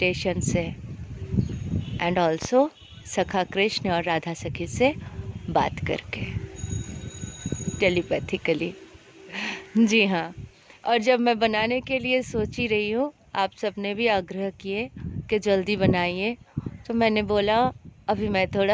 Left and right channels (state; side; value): identical; both; correlation 1.00